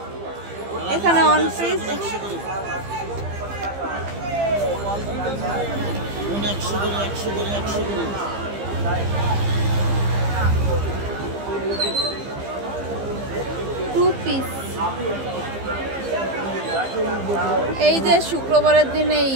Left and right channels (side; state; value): left; late; 15 ms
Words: এখানে অন পিস 100 করে 2 পিস। এই যে শুক্রবারের দিন এই